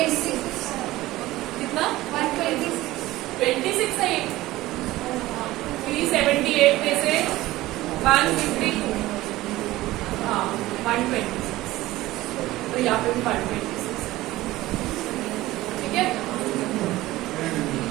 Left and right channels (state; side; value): quieter; left; 17.3 dB